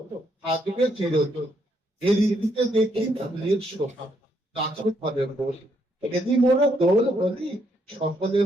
থাকবে চিরদিন। এই ঋতুতে দেখি ফুলের শোভা গাছে ফলে ফুল। এদি মোরা দোল হলি সকলে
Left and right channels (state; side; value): normal; both; correlation 0.74